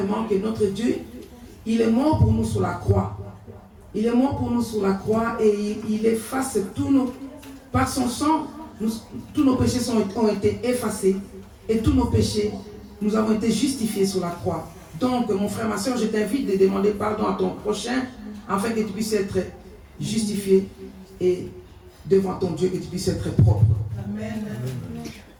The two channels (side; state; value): both; identical; correlation 1.00